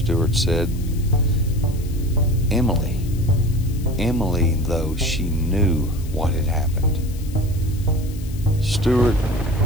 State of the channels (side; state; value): left; noise; hiss, 20 dB below the sound